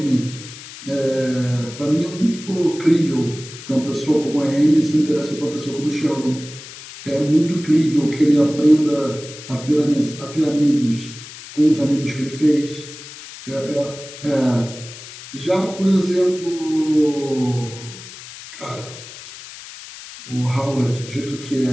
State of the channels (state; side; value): noise; left; hiss, 15 dB below the sound